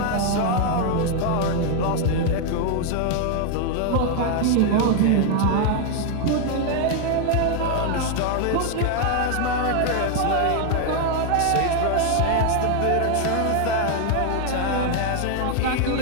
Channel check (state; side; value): different; both; correlation 0.00